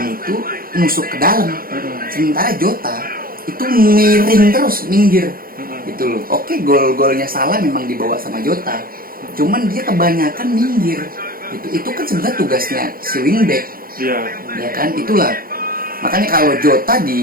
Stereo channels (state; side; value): late; left; 0.42 ms